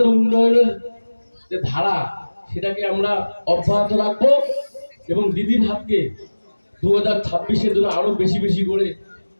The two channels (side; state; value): both; inverted; correlation -1.00